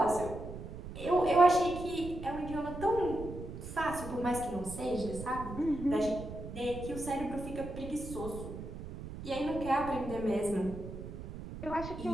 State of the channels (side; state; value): right; noise; rumble, 10 dB below the sound